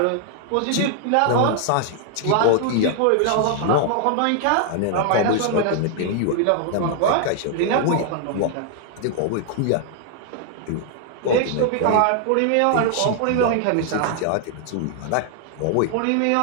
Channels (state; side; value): different; both; correlation 0.00